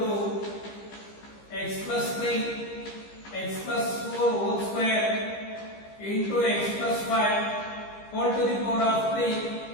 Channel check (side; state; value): right; late; 15 ms